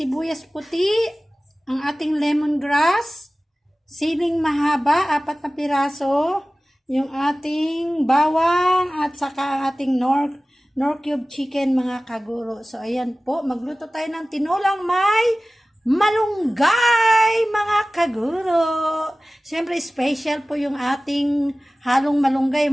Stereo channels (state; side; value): normal; both; correlation 0.97